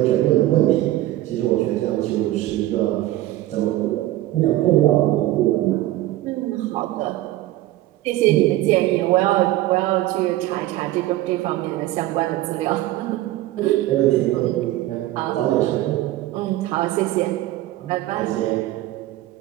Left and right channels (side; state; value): left; quieter; 15.8 dB